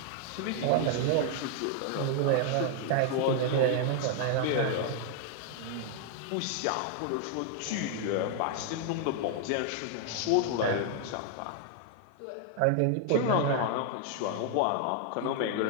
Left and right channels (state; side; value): different; both; correlation 0.00